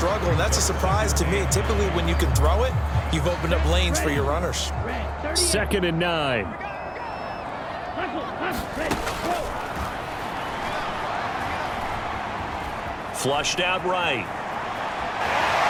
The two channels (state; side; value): identical; both; correlation 1.00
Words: and that's a surprise to me. Typically, when you can throw it, you've opened up lanes for your runners. 2nd and 9. Flushed out right.